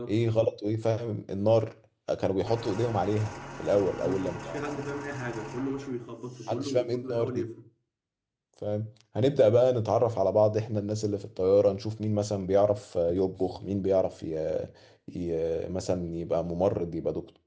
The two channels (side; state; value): both; identical; correlation 1.00